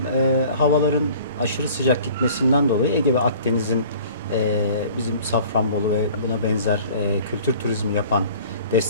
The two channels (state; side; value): inverted; both; correlation -0.48